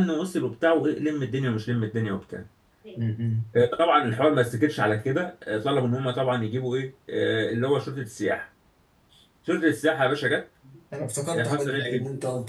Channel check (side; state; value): both; identical; correlation 1.00